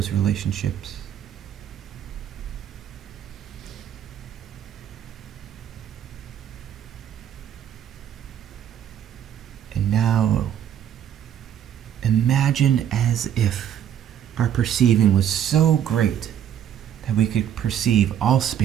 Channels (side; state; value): left; quieter; 9.8 dB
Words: relationships. And now, imagine as if our perceiving was so great that we could perceive all